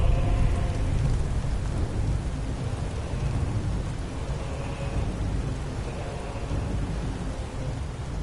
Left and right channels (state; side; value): identical; both; correlation 1.00